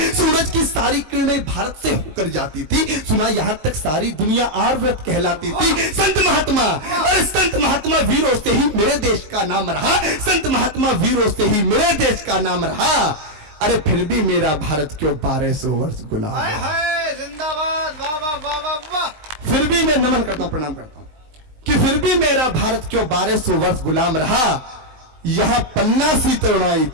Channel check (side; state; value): left; late; 19 ms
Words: सूरज की सारी किरणें भारत से होकर जाती थी, सुना यहां तक सारी दुनिया आर्यव्रत कहलाती थी। संत महात्मा, और संत महात्मा वीरों से ही मेरे देश का नाम रहा, संत महात्मा वीरों से ही मेरे देश का नाम रहा। अरे फिर भी मेरा भारत क्यों 1200 वर्ष गुलाम है? जिंदाबाद, वाह वाह वाह वाह वाह। फिर भी मैं नमन करता हूं, प्रणाम करता हूं कि फिर भी मेरा भारत क्यों 1200 वर्ष गुलाम रहा। यहां पन्ना सी तरुणाई